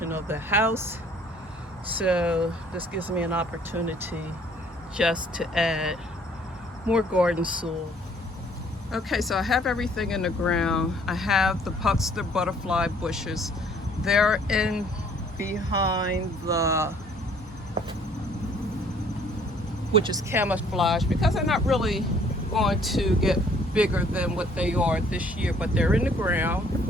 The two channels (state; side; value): normal; both; correlation 0.59